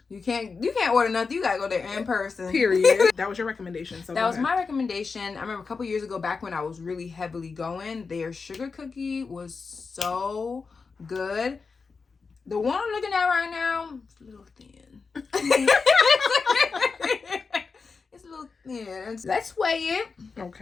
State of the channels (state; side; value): quieter; right; 4.8 dB